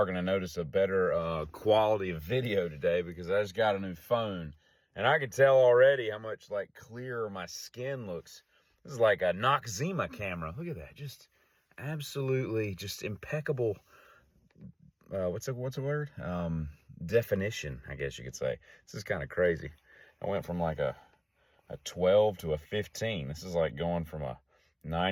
going to notice a better quality of video today because I just got a new phone. And I can tell already how much clearer my skin looks. This is like a Noxzema camera. Look at that. Just absolutely just impeccable. What's a word? Definition, I guess you could say. This is kind of crazy. I went from like a 12 to a 15. This is like going from a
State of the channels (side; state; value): both; identical; correlation 1.00